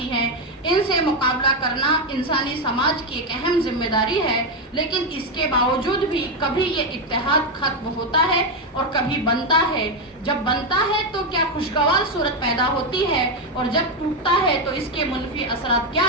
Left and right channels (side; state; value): both; normal; correlation 0.07